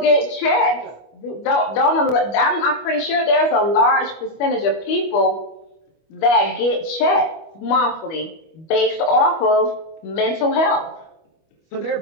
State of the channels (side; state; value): right; late; 25 ms